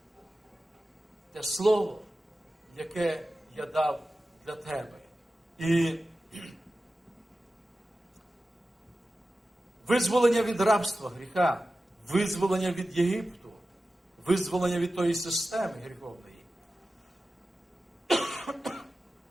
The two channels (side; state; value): both; normal; correlation 0.94